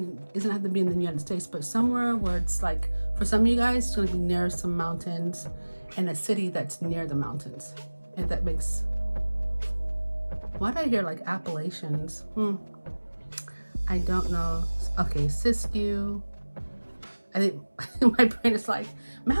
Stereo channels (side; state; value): both; inverted; correlation -1.00